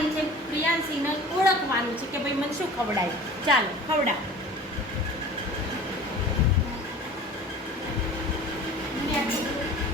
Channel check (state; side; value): normal; both; correlation 0.42